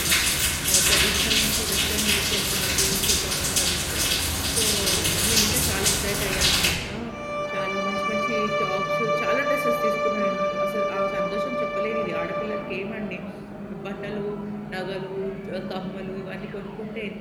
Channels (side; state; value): both; identical; correlation 1.00